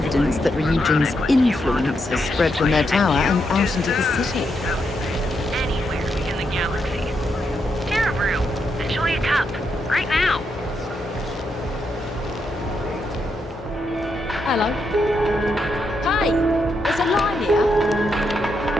that Ryujin's influence has spread from their tower and out into the city. Anywhere in the galaxy. Terra Brew, enjoy a cup, right now. Hello. Hi, there's a line here.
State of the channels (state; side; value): normal; both; correlation 0.81